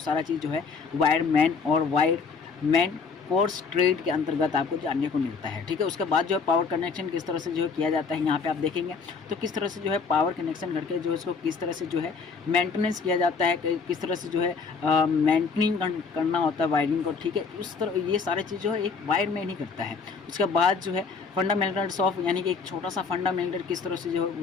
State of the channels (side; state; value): right; quieter; 5.0 dB